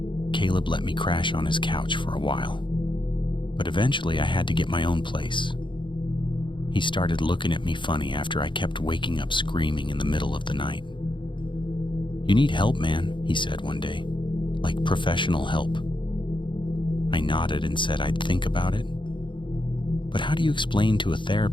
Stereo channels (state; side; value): late; right; 0.23 ms